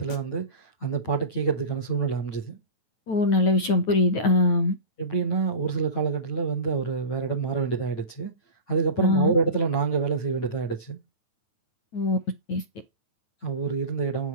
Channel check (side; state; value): right; late; 9.3 ms